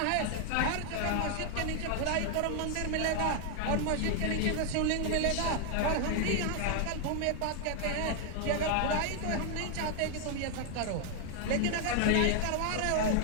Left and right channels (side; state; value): both; different; correlation 0.00